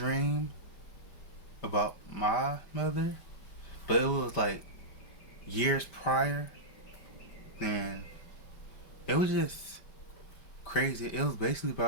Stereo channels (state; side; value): late; right; 5.1 ms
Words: about my mother, but it was like years prior. And it was just crazy. It was basically